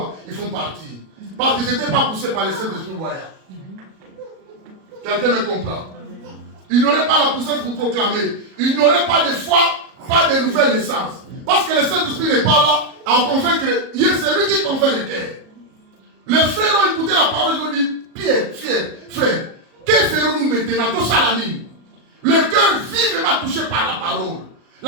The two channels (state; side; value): late; left; 37 ms